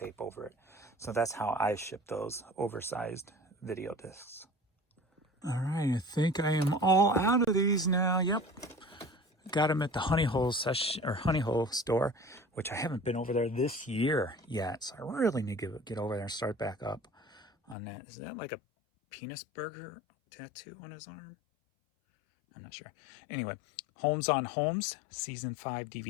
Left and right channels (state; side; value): drops out; right; at 17.8 s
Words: over it. So that's how I ship those oversized video discs. All right, I think I am all out of these now. Yep. Got them at the Honey Hole store, which I haven't been over there this year yet. So I really need to get over there and start back up on that. Is that like a penis burger tattoo on his arm? I'm not sure. Anyway, Homes on Homes Season 5